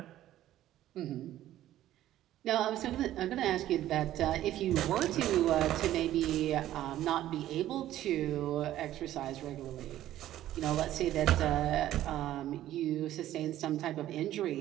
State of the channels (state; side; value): quieter; left; 13.3 dB